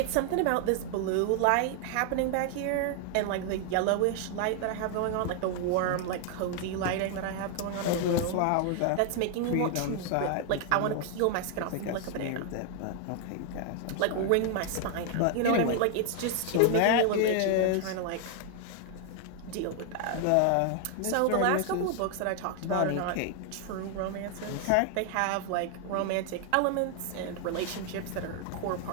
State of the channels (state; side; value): different; both; correlation 0.00